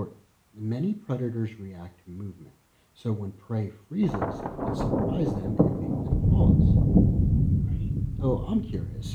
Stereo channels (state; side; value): identical; both; correlation 1.00